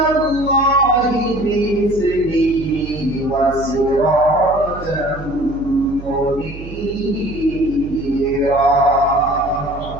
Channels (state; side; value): noise; right; hum, 13 dB below the sound